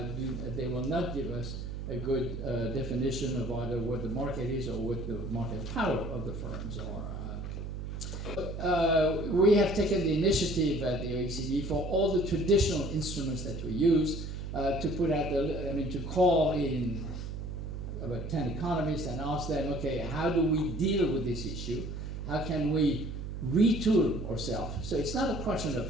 will not give us a good definition of either what the market is or what the market power of the firms are. We have taken the initiative at the OECD for all the traditional instruments that we use to put out to call in about 10 economists and ask them, okay, how do we deal with this issue? How can we retool ourselves? So it's not a question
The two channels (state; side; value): noise; right; hum, 6 dB below the sound